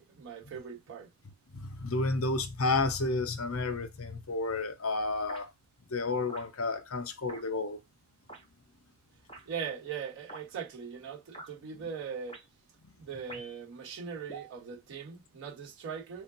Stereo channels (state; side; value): normal; both; correlation 0.00